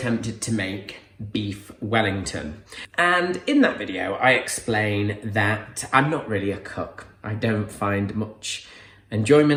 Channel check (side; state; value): both; identical; correlation 1.00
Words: to make beef Wellington. And in that video, I explain that I'm not really a cook. I don't find much